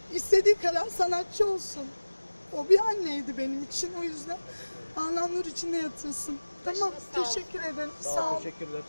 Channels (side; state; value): both; inverted; correlation -1.00